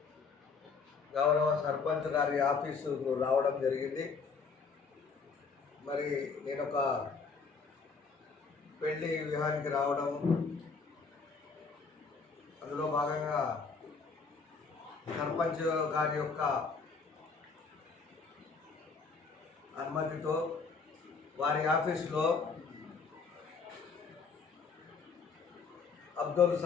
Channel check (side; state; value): right; quieter; 5.0 dB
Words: గౌరవ సర్పంచ్ గారి ఆఫీసుకు రావడం జరిగింది. మరి నేను ఒక పెళ్లి వివాహానికి రావడం, అందులో భాగంగా సర్పంచ్ గారి యొక్క అనుమతితో వారి ఆఫీసులో అబ్దుల్